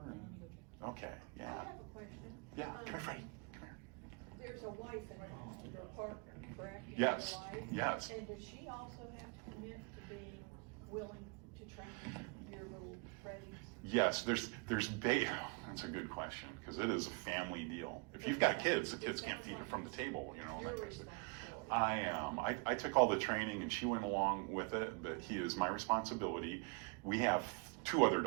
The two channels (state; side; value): quieter; left; 32.1 dB